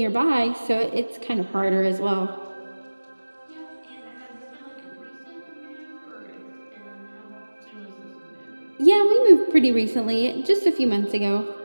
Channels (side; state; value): both; inverted; correlation -1.00